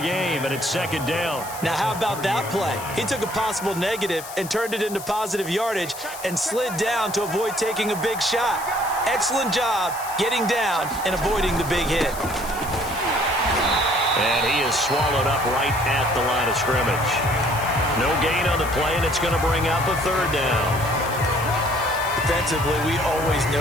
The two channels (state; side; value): noise; left; hiss, 13 dB below the sound